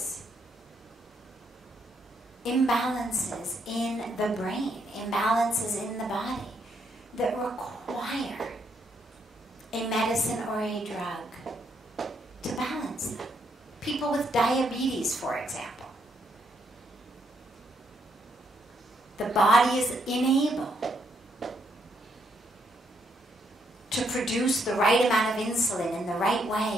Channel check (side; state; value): both; normal; correlation 0.75